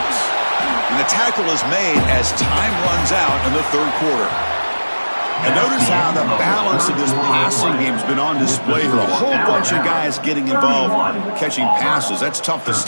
And the tackle is made as time runs out in the 3rd quarter. And notice how the balance of this passing game has been on display here. A whole bunch of guys getting involved catching passes. That's tough to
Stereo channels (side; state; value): both; inverted; correlation -1.00